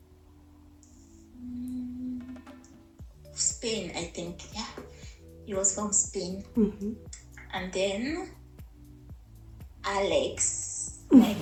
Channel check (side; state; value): both; identical; correlation 1.00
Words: Spain, I think. Yeah, he was from Spain. And then Alex, my